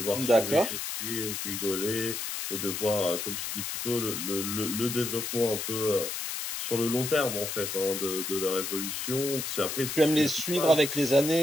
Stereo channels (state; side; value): noise; left; hiss, 4 dB below the sound